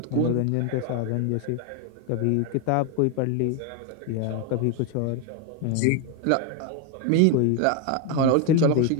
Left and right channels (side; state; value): both; different; correlation 0.01